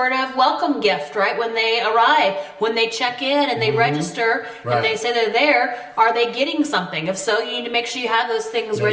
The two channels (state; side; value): identical; both; correlation 1.00